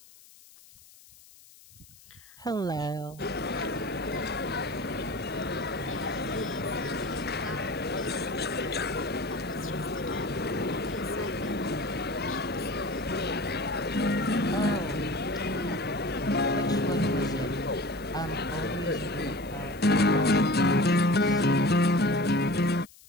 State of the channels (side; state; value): left; noise; hiss, 24 dB below the sound